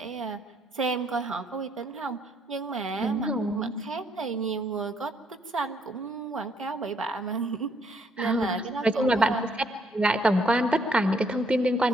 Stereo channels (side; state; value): both; normal; correlation 0.69